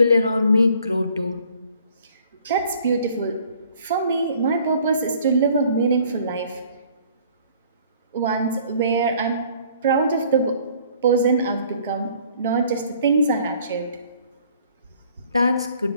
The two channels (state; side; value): inverted; both; correlation -0.57